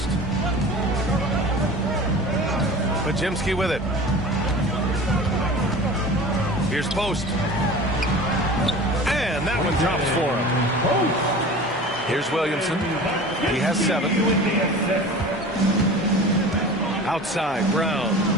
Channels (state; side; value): normal; both; correlation 0.38